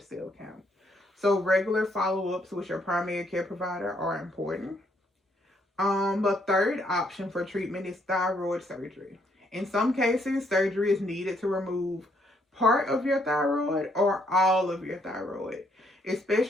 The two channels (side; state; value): both; normal; correlation 0.71